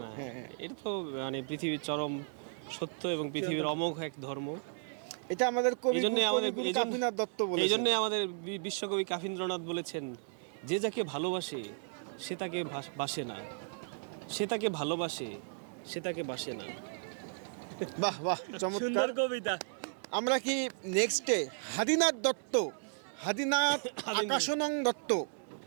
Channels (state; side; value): silent; left; digital silence